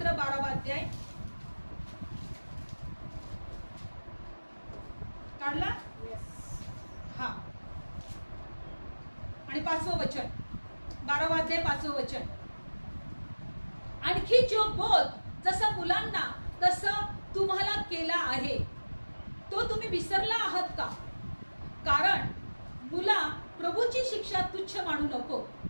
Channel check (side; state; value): both; inverted; correlation -1.00